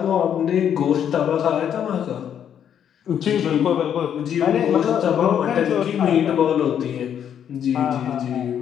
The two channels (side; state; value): right; quieter; 9.0 dB